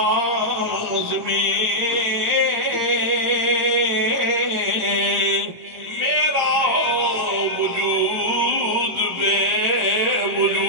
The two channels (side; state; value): left; late; 17 ms